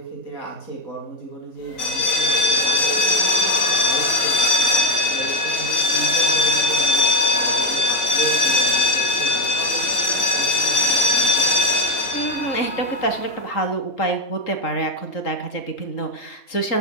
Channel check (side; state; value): right; late; 3.9 ms